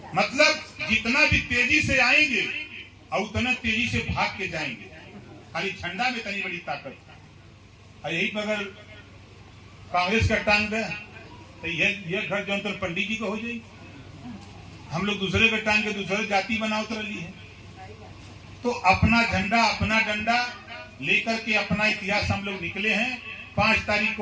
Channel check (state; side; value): identical; both; correlation 1.00